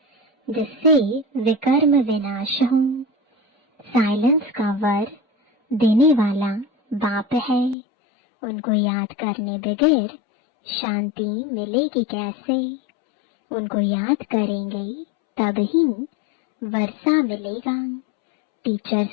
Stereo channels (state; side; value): drops out; right; at 7.8 s